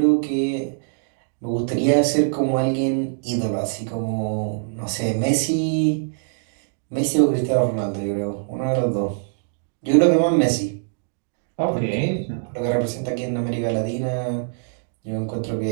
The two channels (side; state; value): left; silent; digital silence